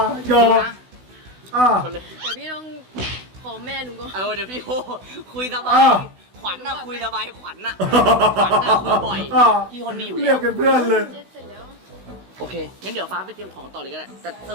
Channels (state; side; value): late; left; 16 ms